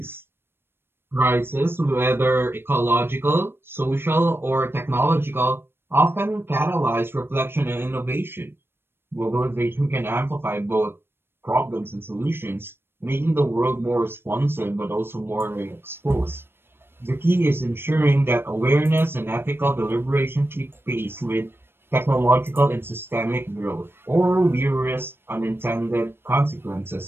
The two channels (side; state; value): left; late; 0.11 ms